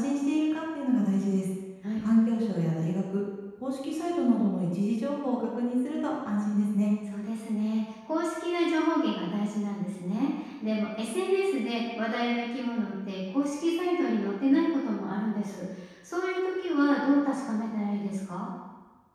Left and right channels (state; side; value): identical; both; correlation 1.00